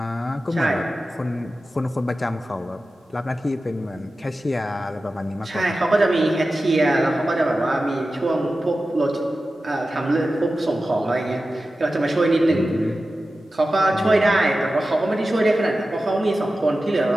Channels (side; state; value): both; normal; correlation 0.94